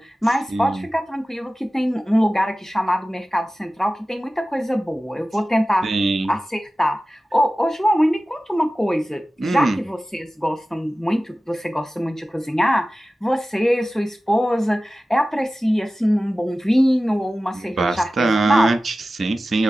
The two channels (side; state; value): both; normal; correlation 0.95